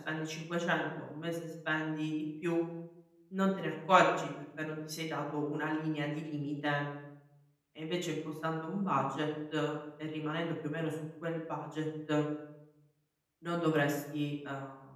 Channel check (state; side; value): identical; both; correlation 1.00